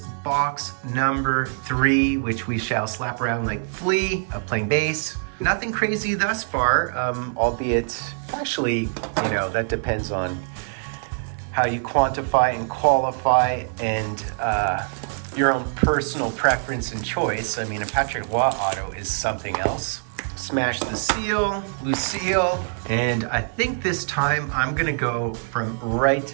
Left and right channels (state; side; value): silent; left; 57 dB below the other